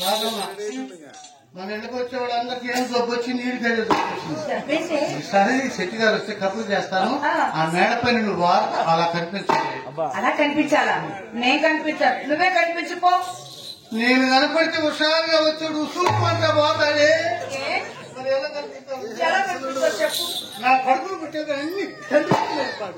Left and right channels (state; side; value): identical; both; correlation 1.00